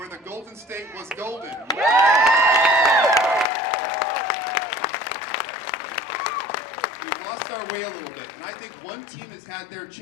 the Golden State was golden. We've lost our way a little bit, and I think one team has had their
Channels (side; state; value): right; drops out; at 3.5 s